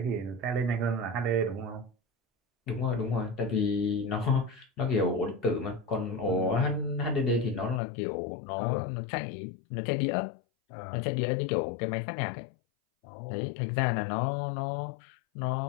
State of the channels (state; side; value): drops out; right; at 7.8 s